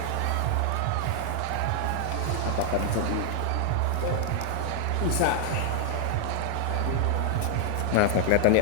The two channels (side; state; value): both; different; correlation -0.01